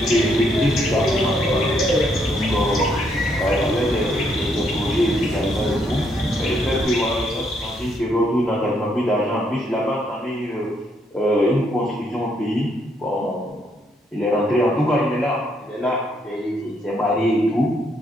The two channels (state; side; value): normal; both; correlation 0.73